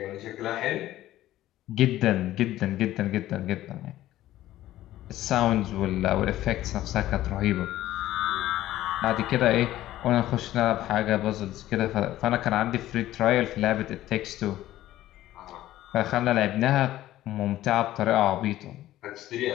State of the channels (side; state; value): right; quieter; 14.4 dB